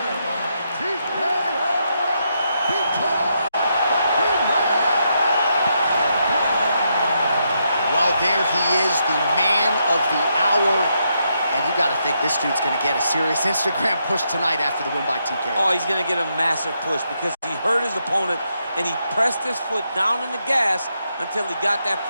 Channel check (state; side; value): inverted; both; correlation -0.80